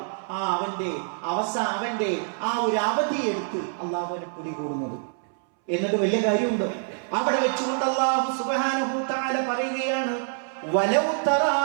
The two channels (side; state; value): left; silent; 61 dB below the other